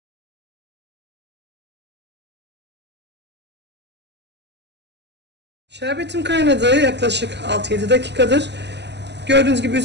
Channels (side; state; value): left; late; 0.50 ms